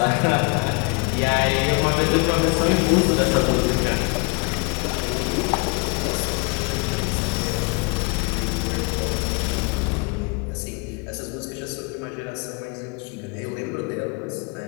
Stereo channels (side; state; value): right; quieter; 31.2 dB